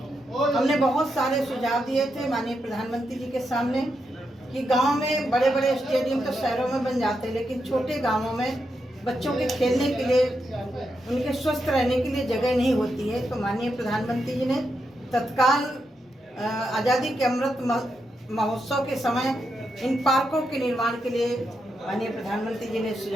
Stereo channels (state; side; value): normal; both; correlation 0.84